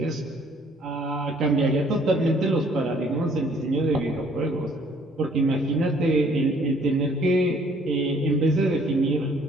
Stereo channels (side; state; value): both; normal; correlation 0.60